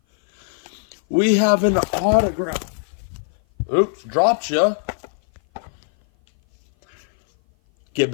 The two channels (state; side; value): silent; right; 57 dB below the other